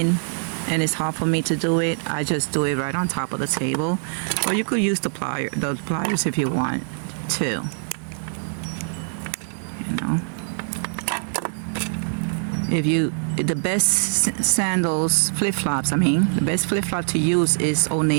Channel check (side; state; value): left; silent; digital silence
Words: and it's hard for me to do it, I just do it right on top of the table. Or you could use the pliers if you want to. You know. The best sandals, flip-flops, the best flip-flop to use is Old